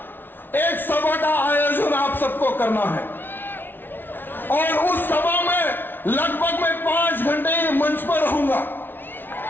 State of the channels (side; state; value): right; late; 0.099 ms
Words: एक सभा का आयोजन आप सबको करना है और उस सभा में लगभग मैं 5 घंटे मंच पर रहूंगा।